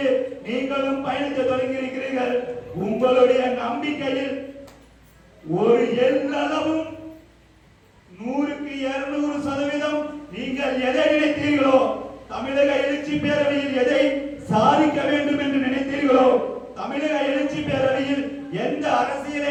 நீங்களும் பயணத்தை தொடங்கி இருக்கிறீர்கள். உங்களுடைய நம்பிக்கையில் ஒரு எல்லளவும் 100க்கு 200% நீங்கள் எதை நினைத்தீர்களோ, தமிழக எழுச்சி பேரவையில் எதை சாதிக்க வேண்டும் என்று நினைத்தீர்களோ, தமிழக எழுச்சி பேரவையில் எந்த அரசியலை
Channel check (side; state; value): both; identical; correlation 1.00